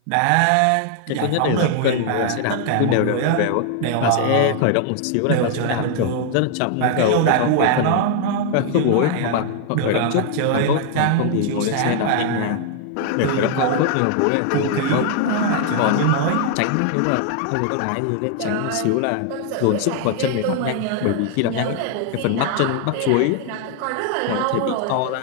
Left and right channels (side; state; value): both; different; correlation 0.00